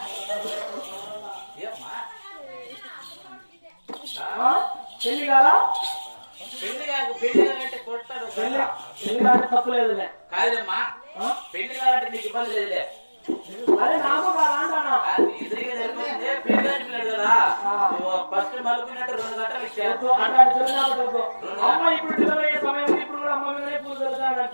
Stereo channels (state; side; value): inverted; both; correlation -1.00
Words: పెళ్లి కాదా పెళ్లి కాదంటే కొడతాడు పెళ్లి కాదంటే తప్పు లేదులే కాదమ్మా పెళ్లి కాదంటే నీకు ఇబ్బంది లేదులే అదే నాకు కాదా అంటానా ఎదురుగా జరిగిపోతుంది పెళ్లి కాదు కదా ఫస్ట్ మలుపునట్టు 2 గంటలు ఇచ్చారు అమ్మ ఇప్పుడు డెలివరీ అయ్యే సమయం ఇప్పుడు కూడా అమ్మ మీదనే పూజ